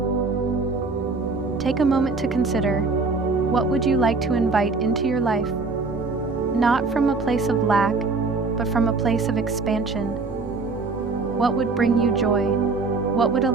Take a moment to consider, what would you like to invite into your life? Not from a place of lack, but from a place of expansion. What would bring you joy? What would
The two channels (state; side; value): quieter; left; 4.0 dB